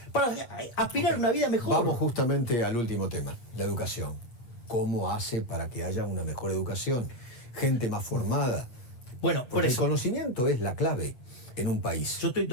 para aspirar a una vida mejor. Vamos justamente al último tema, la educación. ¿Cómo hace para que haya una mejor educación? Gente más formada. Bueno, por Porque el eso. conocimiento es la clave en un país. Yo estoy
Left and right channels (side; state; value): right; late; 8.3 ms